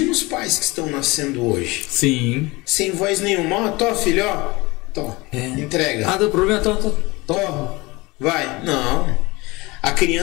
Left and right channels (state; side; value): quieter; right; 23.0 dB